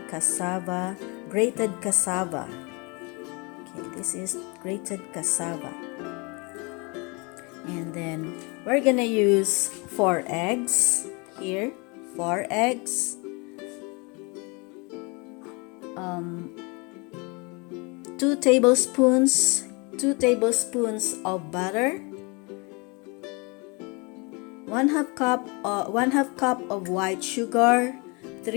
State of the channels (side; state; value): right; quieter; 29.6 dB